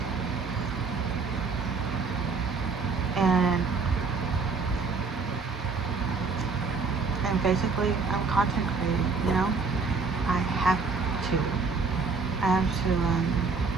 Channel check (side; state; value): left; quieter; 4.7 dB